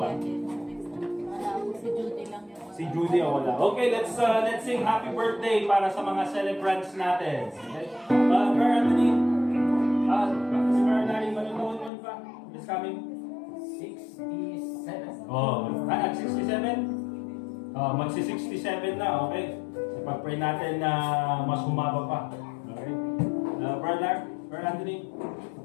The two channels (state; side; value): drops out; right; at 11.9 s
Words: pa? Wala ako, si Judy lang yung Si Judy o wala. Okay, let's sing happy birthday para sa mga celebrants natin. Okay? Brother Anthony, si Brother Larry, manonood nun pa? It's coming. 67. Oh, at 67? Magsi-67 na, okay? Ipag-pray natin na mas humaba pa. Okay? Brother Anthony?